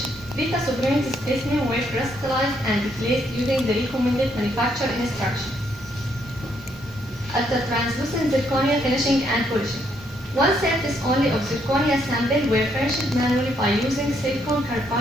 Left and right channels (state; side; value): normal; both; correlation 0.73